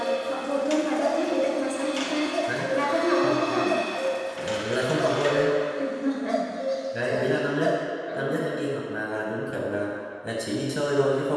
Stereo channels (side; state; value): both; identical; correlation 1.00